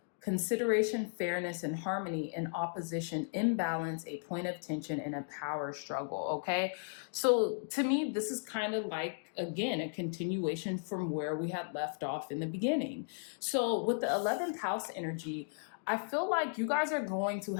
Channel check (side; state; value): right; silent; digital silence